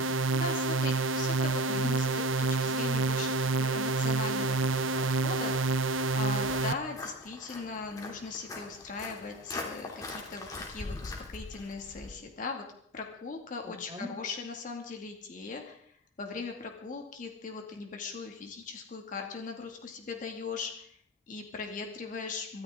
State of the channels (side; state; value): both; normal; correlation 0.30